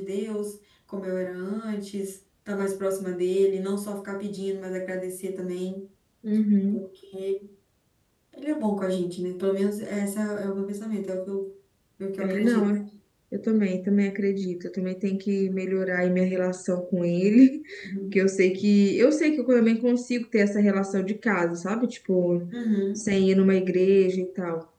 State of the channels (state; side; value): identical; both; correlation 1.00